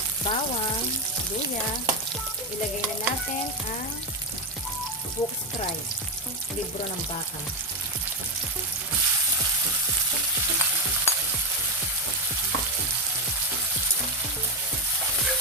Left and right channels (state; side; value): normal; both; correlation 0.09